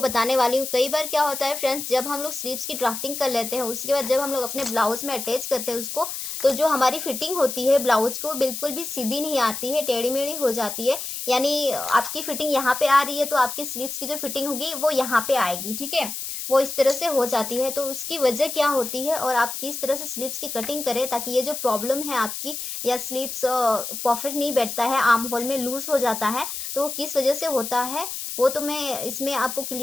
बताने वाली हूँ। कई बार क्या होता है फ्रेंड्स, जब हम लोग स्लीव्स की ड्राफ्टिंग कर लेते हैं, उसके बाद जब हम लोग अपने ब्लाउज में अटैच करते हैं उसको, तो जो हमारी फिटिंग होती है ब्लाउज को, बिल्कुल भी सीधी नहीं आती है, टेढ़ी मेढ़ी हो जाती है। यानी आपकी फिटिंग यहाँ पे आ रही है तो आपकी स्लीव्स की जो फिटिंग होगी वो यहाँ पे आएगी, ठीक है। वो इस तरह से हो जाती है। तो उसकी वजह क्या होती है और आप किस तरह से स्लीव्स की कटिंग करें ताकि ये जो प्रॉब्लम है आपकी, या स्लीव्स परफेक्ट नहीं बैठता है, आर्म होल में लूज हो जाता है, तो किस वजह से होता है वो तो मैं इसमें आपको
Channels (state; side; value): noise; left; hiss, 6 dB below the sound